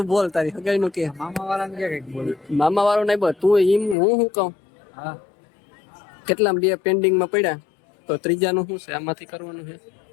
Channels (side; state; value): right; drops out; at 4.0 s